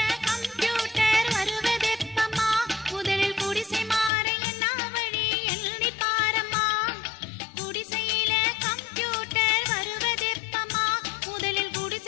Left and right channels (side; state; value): right; drops out; at 4.1 s